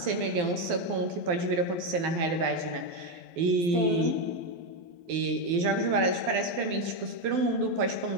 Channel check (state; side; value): late; left; 12 ms